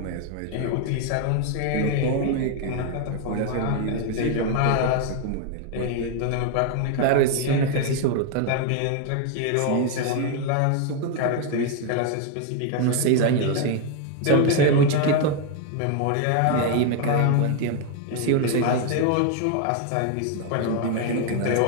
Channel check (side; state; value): both; different; correlation 0.01